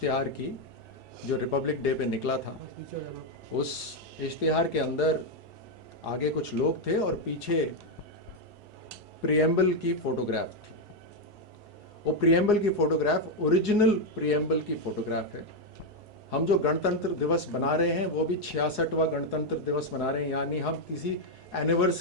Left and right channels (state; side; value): normal; both; correlation 0.03